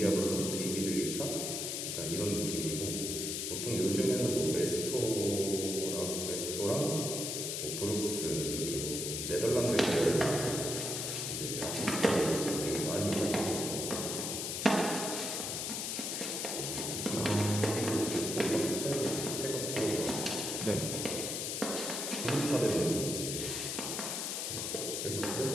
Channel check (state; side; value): noise; left; hiss, 2 dB below the sound